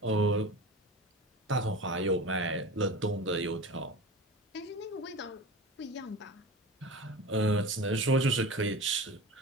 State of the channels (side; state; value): both; normal; correlation 0.32